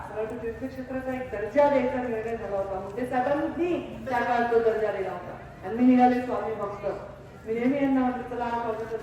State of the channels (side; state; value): both; identical; correlation 1.00